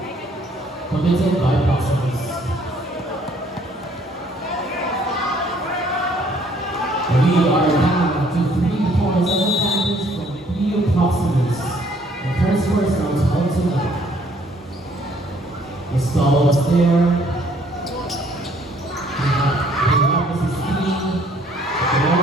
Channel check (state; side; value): normal; both; correlation 0.62